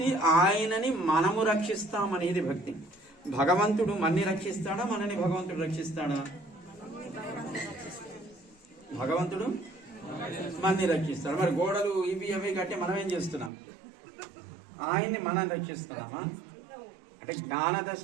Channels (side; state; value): left; drops out; at 13.5 s